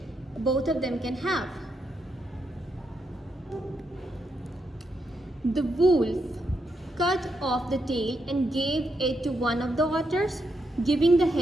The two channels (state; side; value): normal; both; correlation 0.81